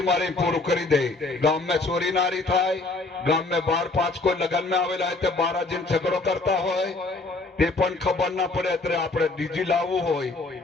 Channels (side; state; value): right; quieter; 3.4 dB